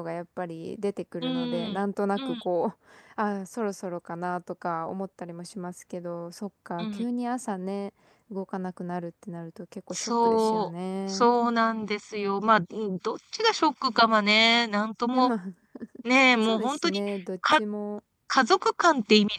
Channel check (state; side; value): identical; both; correlation 1.00